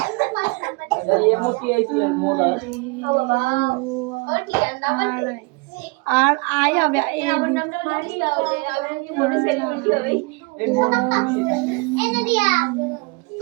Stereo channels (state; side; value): quieter; left; 28.6 dB